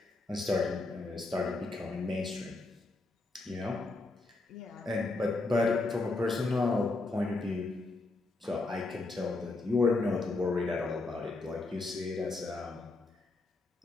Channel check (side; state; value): right; quieter; 3.3 dB